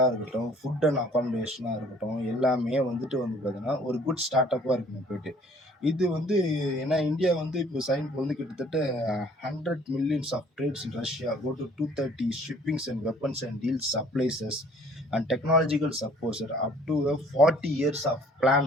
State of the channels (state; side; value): normal; both; correlation 0.56